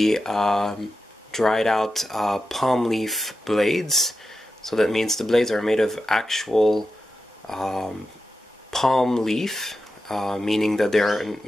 dried out palm leaf blades. So that means the blades are made of actual palm leaf, meaning that they're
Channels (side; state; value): both; normal; correlation 0.90